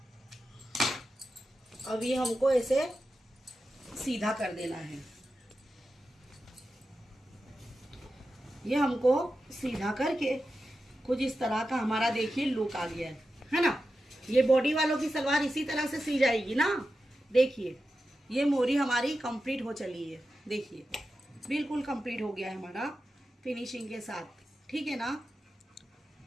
अब ये हमको ऐसे सीधा कर देना है, ये हमको सीधा करके कुछ इस तरह का हमारा देखिए लुक आ गया है ना। ये बॉडी वालों की सलवार इसी तरह से सी जाएगी ना। देखिए ये मोरी हमारी कंप्लीट हो चली है, देखिए बिल्कुल कंप्लीट हो गया है हमारा फिनिशिंग के साथ, ठीक है ना।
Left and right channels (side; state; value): both; normal; correlation 0.91